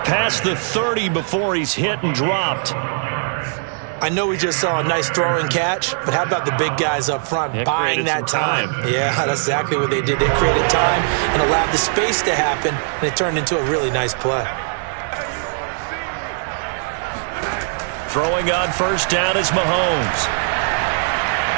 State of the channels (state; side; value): silent; left; digital silence